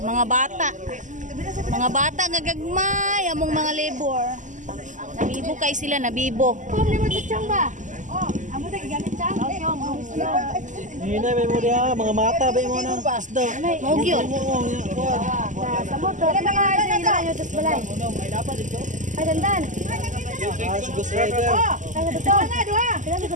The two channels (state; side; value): late; left; 0.37 ms